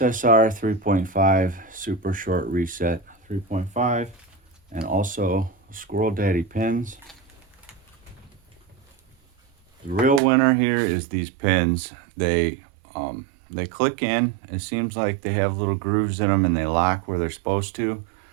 super short reset 3.5 and also Squirrel Daddy pins. The real winner here is these pins. They click in. It seems like they have little grooves in them and they lock where they're supposed to.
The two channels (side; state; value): left; drops out; at 10.2 s